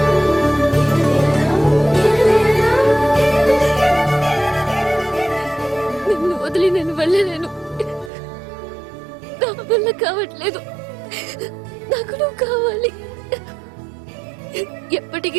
నిన్ను వదిలి నేను వెళ్ళలేను. నా వల్ల కావట్లేదు. నాకు నువ్వు కావాలి.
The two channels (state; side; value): drops out; left; at 8.1 s